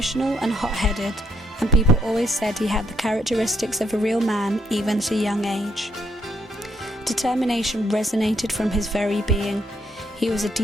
and hot-headed, and people always said he had the characteristics of a real man even at a young age. Determination resonated from his very being. He was a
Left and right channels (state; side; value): normal; both; correlation 0.74